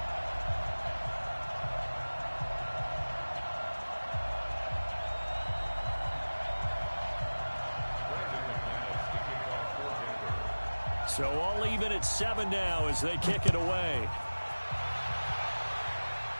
So all even at 7 now as they kick it away.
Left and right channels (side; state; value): both; inverted; correlation -1.00